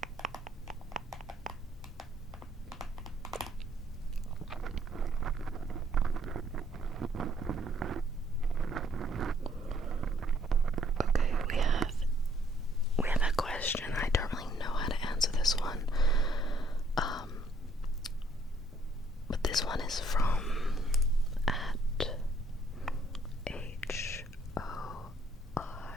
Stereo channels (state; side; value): normal; both; correlation 0.65